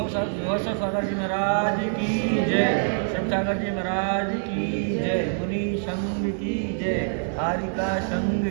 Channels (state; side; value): silent; left; digital silence